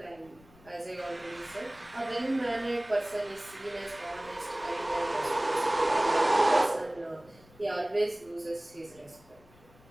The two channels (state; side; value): noise; left; rumble, 26 dB below the sound